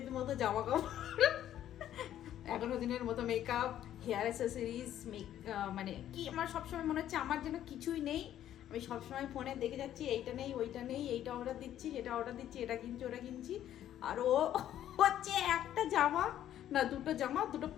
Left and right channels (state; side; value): quieter; right; 11.5 dB